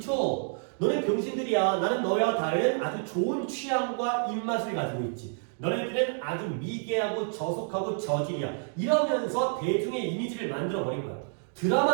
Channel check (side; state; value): left; silent; 58 dB below the other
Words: 너네 병신들이야. 나는 너와 다른 아주 좋은 취향과 입맛을 가지고 있지. 너네들은 아주 미개하고 저속하고 저질이야. 이러면서 대중의 이미지를 만들어버린 거야.